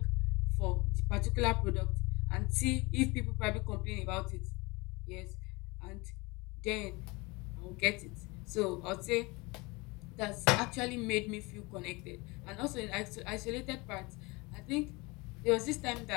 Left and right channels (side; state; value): right; quieter; 25.1 dB